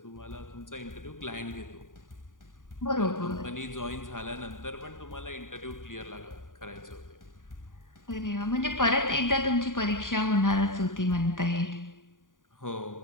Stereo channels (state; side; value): late; right; 0.88 ms